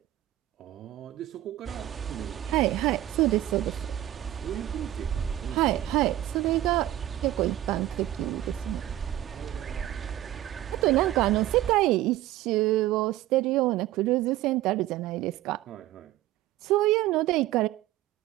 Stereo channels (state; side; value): quieter; left; 14.3 dB